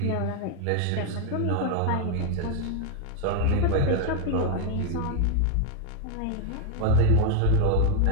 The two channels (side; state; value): both; different; correlation 0.01